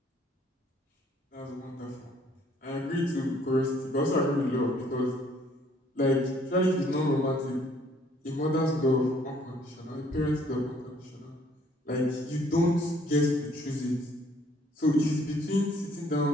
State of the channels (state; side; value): normal; both; correlation 0.62